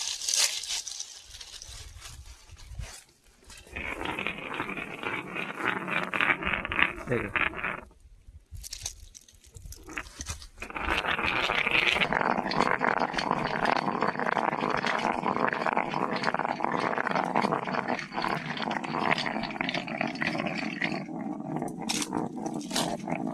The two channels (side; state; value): both; identical; correlation 1.00